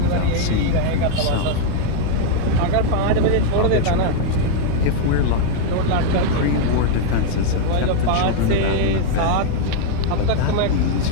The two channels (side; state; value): both; different; correlation -0.01